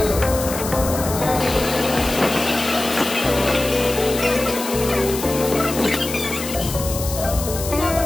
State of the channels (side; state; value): left; noise; hiss, 8 dB below the sound